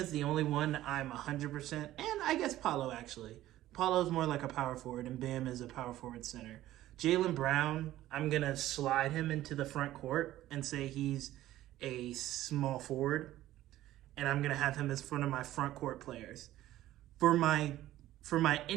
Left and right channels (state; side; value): quieter; left; 14.6 dB